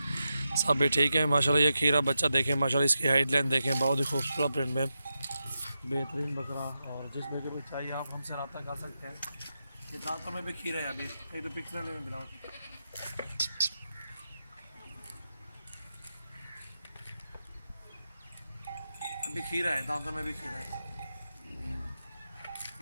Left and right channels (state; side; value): inverted; both; correlation -0.89